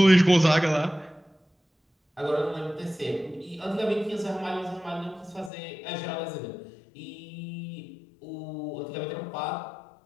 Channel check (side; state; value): right; drops out; at 5.5 s